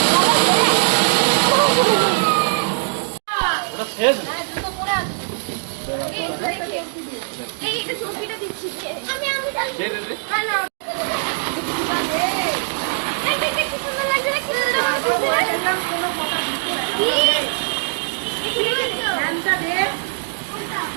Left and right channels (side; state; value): left; silent; digital silence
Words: ওটা শেষ না।